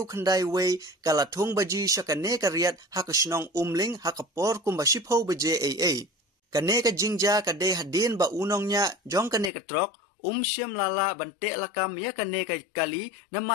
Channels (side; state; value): right; drops out; at 9.5 s